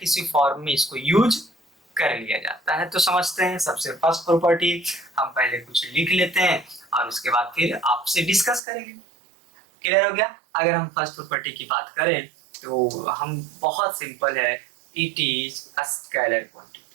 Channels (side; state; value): left; drops out; at 8.6 s